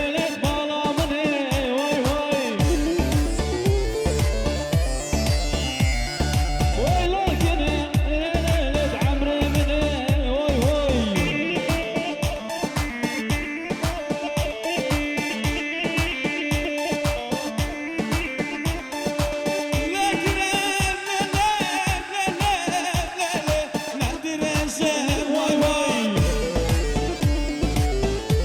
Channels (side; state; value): both; identical; correlation 1.00